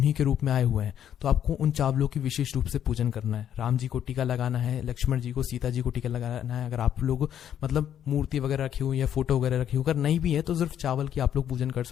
के रूप में आए हुए हैं। तो आपको उन चावलों की विशेष रूप से पूजन करना है। राम जी को टीका लगाना है, लक्ष्मण जी को, सीता जी को टीका लगाना है। अगर आप लोग मतलब मूर्ति वगैरह रखी हुई या फोटो वगैरह रखी हुई, अगर नहीं भी है तो सिर्फ चावल की आप लोग पूजन कर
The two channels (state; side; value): quieter; right; 9.9 dB